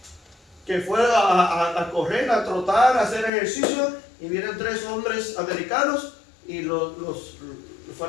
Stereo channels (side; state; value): right; drops out; at 3.3 s